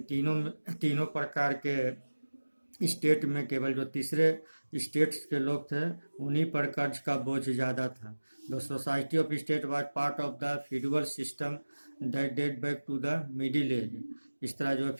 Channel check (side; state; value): both; inverted; correlation -1.00